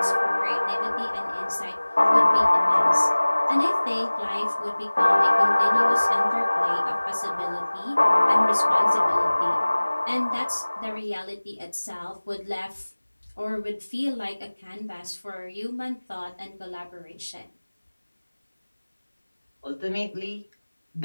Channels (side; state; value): both; inverted; correlation -1.00